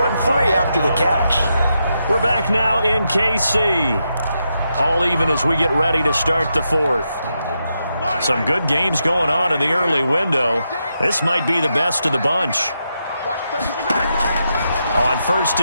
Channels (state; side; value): inverted; both; correlation -0.84